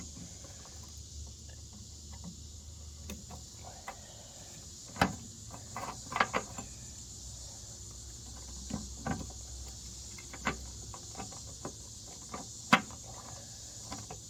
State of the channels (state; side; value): identical; both; correlation 1.00